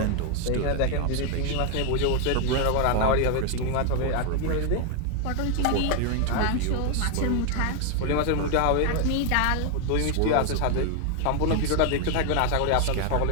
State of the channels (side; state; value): both; different; correlation 0.01